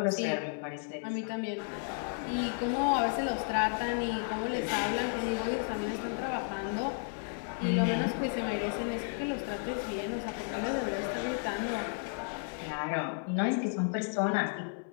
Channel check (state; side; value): silent; right; 56 dB below the other